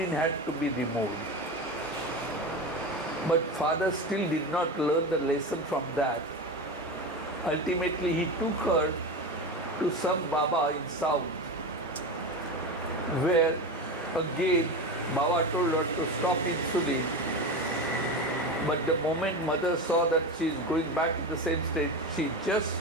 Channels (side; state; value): both; normal; correlation 0.23